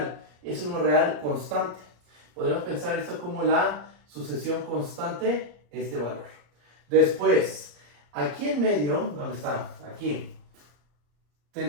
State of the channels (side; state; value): left; late; 34 ms